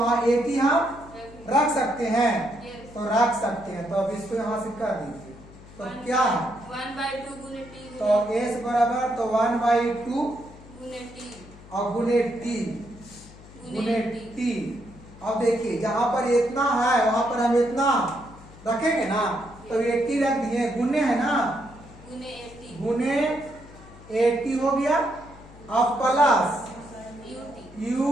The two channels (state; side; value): noise; left; hum, 20 dB below the sound